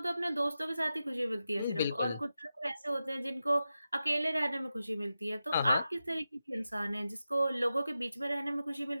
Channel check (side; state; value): both; inverted; correlation -0.92